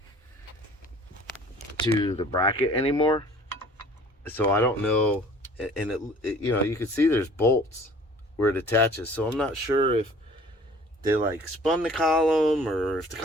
to the bracket anymore, so I don't know. And it you know, you can see there's bolts where it attaches, so I'm not sure if they like spun the column or if the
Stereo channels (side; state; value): both; normal; correlation 0.50